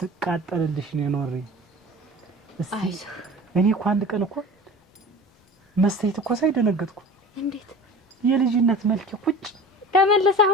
ነው ኖሬ። እስቲ እኔ እኮ አንድ ቀን እኮ መስተይት እኮ ሳይደነገጥኩ እንዴት የልጅነት መልክ ቁጭ ተመለሰ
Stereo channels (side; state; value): both; normal; correlation 0.38